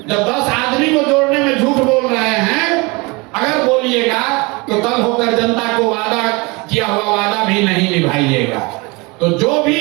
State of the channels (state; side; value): quieter; left; 26.5 dB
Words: 10 आदमी को जोड़ने में झूठ बोल रहे हैं, अगर बोलिएगा तो कल होकर जनता को वादा किया हुआ वादा भी नहीं निभाइएगा। तो जो